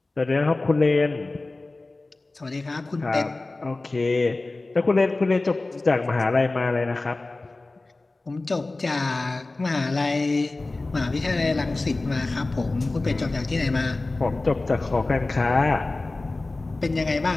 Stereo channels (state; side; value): quieter; right; 3.2 dB